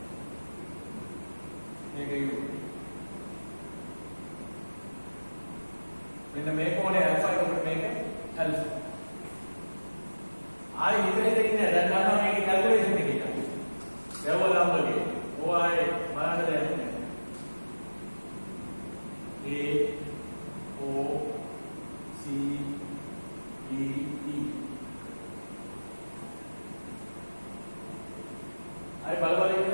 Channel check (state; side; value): inverted; both; correlation -1.00